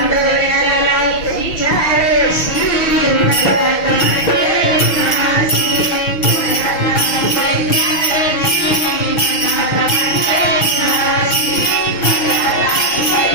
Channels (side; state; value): right; late; 6.2 ms